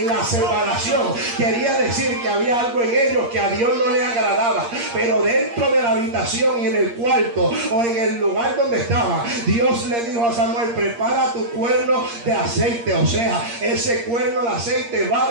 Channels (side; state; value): left; late; 8.6 ms